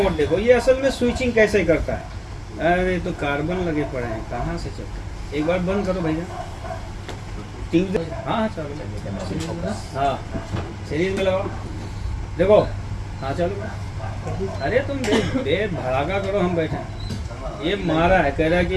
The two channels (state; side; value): identical; both; correlation 1.00